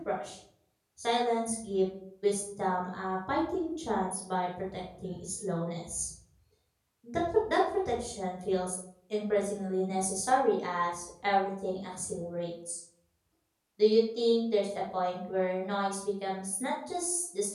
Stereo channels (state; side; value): identical; both; correlation 1.00